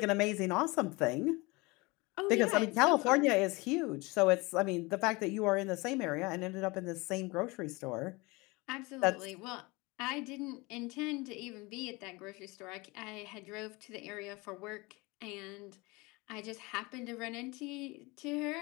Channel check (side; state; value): right; quieter; 24.8 dB